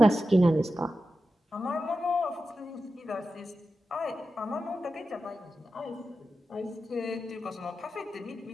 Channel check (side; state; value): both; normal; correlation 0.91